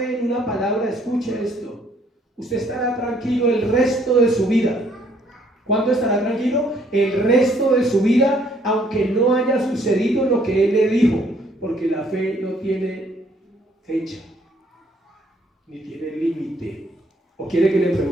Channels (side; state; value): both; normal; correlation 0.64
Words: en una palabra, escuche esto, usted estará tranquilo el resto de su vida. ¿Cuándo estará tranquilo? El resto de su vida, aunque no haya sucedido lo que Él le dijo, porque la fe no tiene fecha, ni tiene límite. ¿O quiere que le